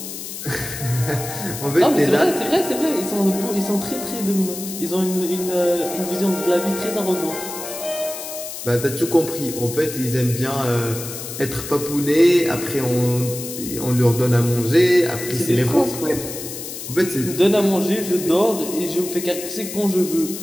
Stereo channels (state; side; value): noise; left; hiss, 9 dB below the sound